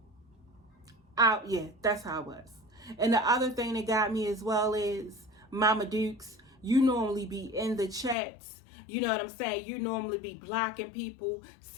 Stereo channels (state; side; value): drops out; right; at 8.2 s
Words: Yeah, that's how it was. And the other thing that got me as well is, Mama Dukes, you normally be in the chats. You know what I'm saying? You normally be blocking people,